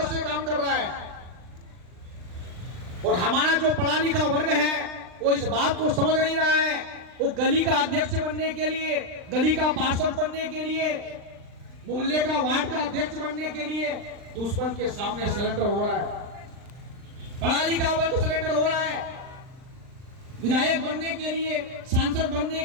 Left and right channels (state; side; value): late; left; 39 ms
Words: से काम कर रहा है। और हमारा जो पढ़ा लिखा वर्ग है वो इस बात को समझ नहीं रहा है। वो गली का अध्यक्ष बनने के लिए, गली का पार्षद बनने के लिए, मोहल्ले का वार्ड का अध्यक्ष बनने के लिए दुश्मन के सामने सरेंडर हो रहा है। पढ़ा लिखा वर्ग सरेंडर हो रहा है। विधायक बनने के लिए, सांसद बनने